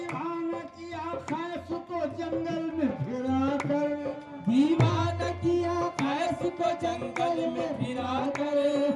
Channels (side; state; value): both; identical; correlation 1.00